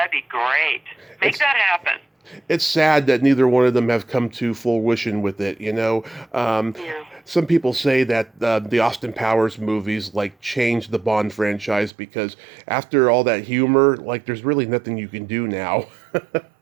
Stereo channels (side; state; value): left; drops out; at 11.9 s